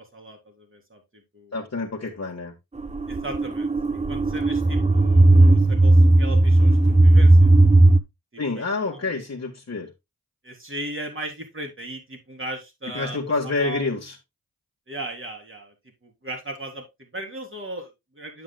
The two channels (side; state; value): both; normal; correlation 0.89